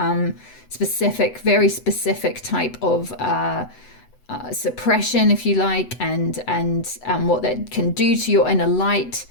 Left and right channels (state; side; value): late; right; 8.0 ms